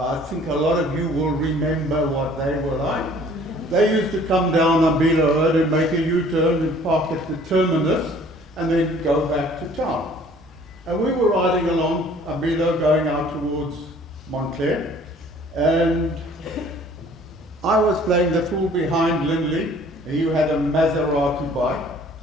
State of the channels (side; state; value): both; normal; correlation 0.54